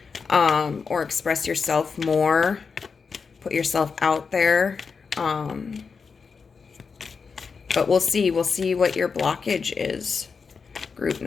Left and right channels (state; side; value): quieter; right; 5.3 dB